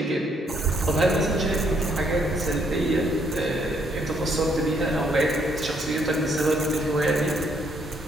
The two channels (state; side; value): normal; both; correlation 0.70